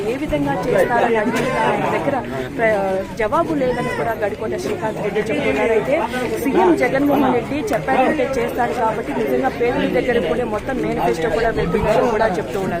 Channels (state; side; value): identical; both; correlation 1.00